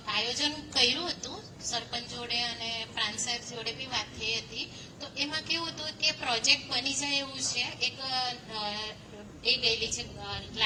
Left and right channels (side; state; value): both; identical; correlation 1.00